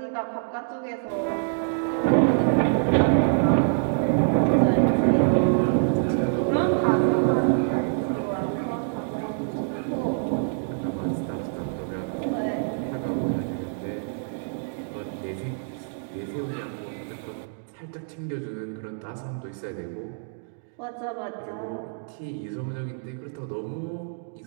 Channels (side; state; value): left; silent; digital silence